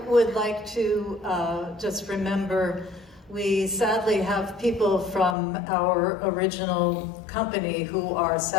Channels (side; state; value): right; drops out; at 5.4 s